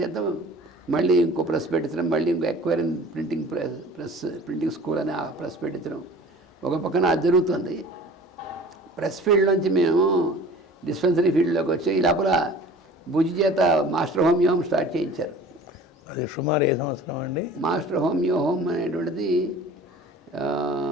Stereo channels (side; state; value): both; normal; correlation 0.44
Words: చేత మళ్ళీ ఇంకో ప్రెస్ పెట్టించడం, మళ్ళీ ఇంకో ఎక్వైరింగ్ ప్రింటింగ్ స్కూల్ అని ఆ ప్రెస్ పెట్టించడం ఒక పక్కన అది జరుగుతుంది. ప్రెస్ ఫీల్డ్ నుంచి మేము డిస్పెన్సరీ ఫీల్డ్లోకి వచ్చి ఈ లోపల భుజి చేత మాస్టర్ హోమియో స్టార్ట్ చేయించారు. అది సుమారు ఏ సంవత్సరం అండి? మాస్టర్ హోమియో హోమ్ అనేటువంటిది